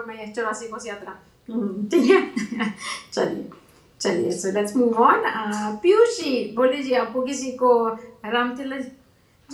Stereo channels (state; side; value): identical; both; correlation 1.00